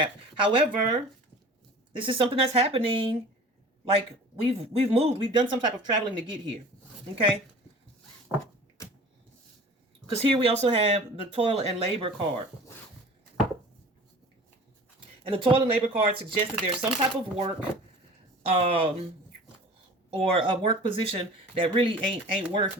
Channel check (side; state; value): both; normal; correlation 0.43